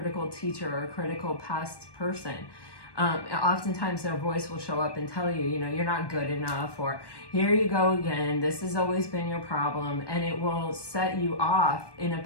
teacher or a critical past person, oftentimes their voice will show up and tell you, you're not good enough, or here you go again, this has always been your problem, and it will set you off in a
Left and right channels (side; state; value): right; late; 1.2 ms